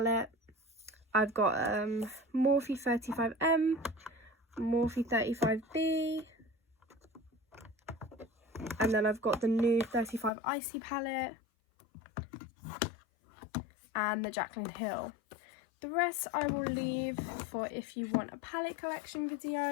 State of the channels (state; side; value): drops out; right; at 10.3 s